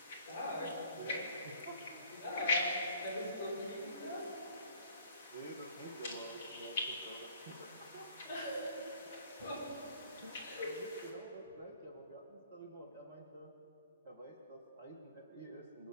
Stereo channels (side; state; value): both; inverted; correlation -0.55